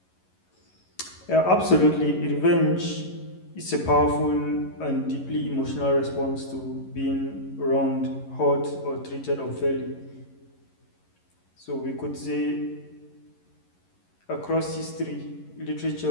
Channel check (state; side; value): late; right; 11 ms